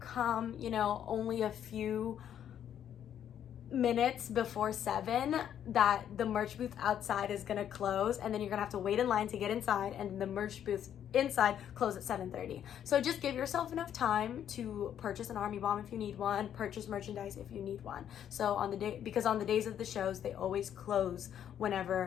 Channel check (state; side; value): quieter; right; 9.8 dB